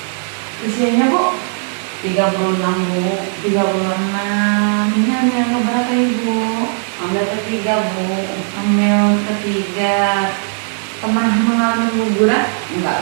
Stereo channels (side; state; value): left; silent; 60 dB below the other